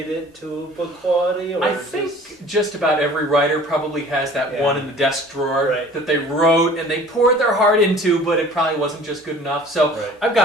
it to book quality? Or I think just about every writer probably has that one in the desk drawer that they wrote and they poured their heart into, but it probably wasn't just good enough. So I've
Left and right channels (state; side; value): normal; both; correlation 0.48